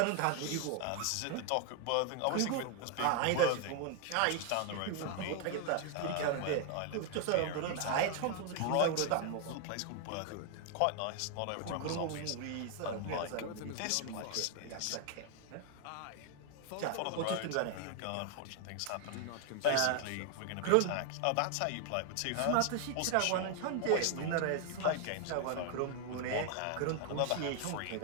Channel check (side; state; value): both; different; correlation 0.00